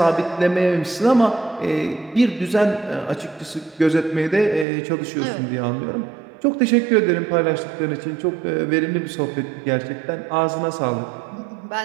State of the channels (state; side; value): drops out; left; at 4.7 s